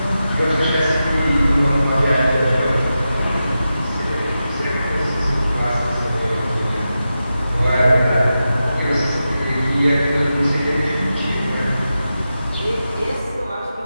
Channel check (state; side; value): inverted; both; correlation -0.91